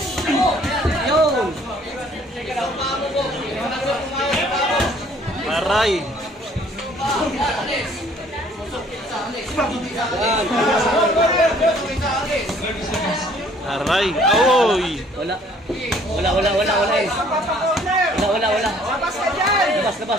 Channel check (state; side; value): normal; both; correlation 0.58